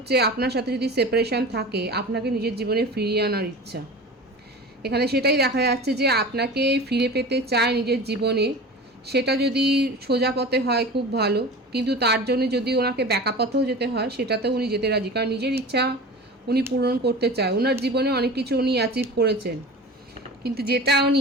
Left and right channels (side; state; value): both; normal; correlation 0.35